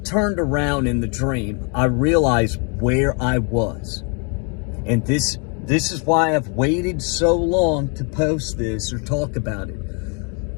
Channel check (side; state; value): right; quieter; 36.9 dB